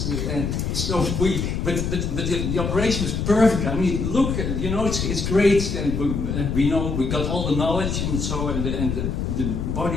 so but the operation was perfect. I mean, look, you know, it's great, and we know we got all the knowledge, and so and the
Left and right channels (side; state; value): left; noise; rumble, 1 dB below the sound